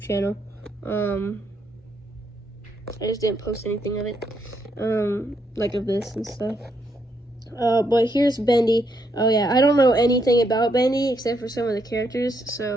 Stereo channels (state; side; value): normal; both; correlation 0.76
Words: I just didn't post anything of it, like of this and stuff. But here's Bendy. Oh yeah, I don't know anything about Bendy except for some of the characters,